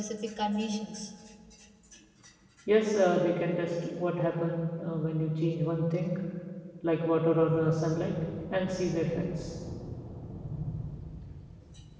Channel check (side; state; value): both; identical; correlation 1.00